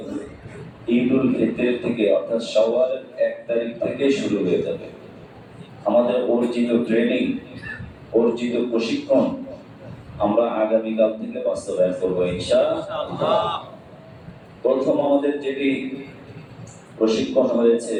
ঈদুল ফিতর থেকে অর্থাৎ শাওয়ালের ১ তারিখ থেকে শুরু হয়ে যাবে। আমাদের অর্জিত ট্রেনিং, অর্জিত প্রশিক্ষণ আমরা আগামীকাল থেকে বাস্তবায়ন করবো ইনশাআল্লাহ। প্রথম আমাদের যেটি প্রশিক্ষণ হয়েছে,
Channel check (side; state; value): both; identical; correlation 1.00